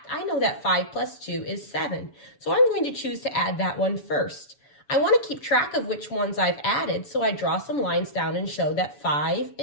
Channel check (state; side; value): late; right; 7.0 ms